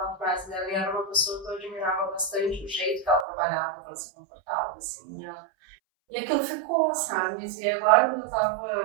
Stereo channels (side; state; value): left; drops out; at 3.2 s